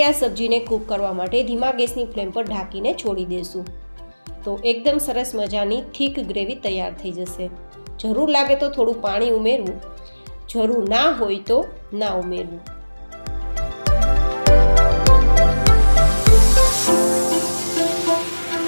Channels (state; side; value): inverted; both; correlation -1.00